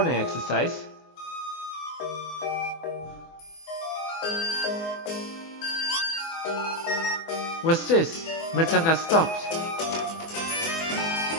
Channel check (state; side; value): late; right; 24 ms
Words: exercise. What's this? Miltank has stopped.